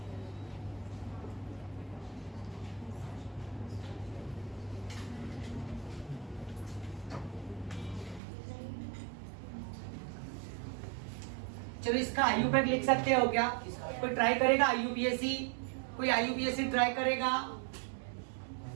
चलो इसका IUPAC लिख सकते हो क्या? कोई ट्राई करेगा IUPAC? कोई IUPAC ट्राई करेगा?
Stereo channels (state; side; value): drops out; left; at 8.2 s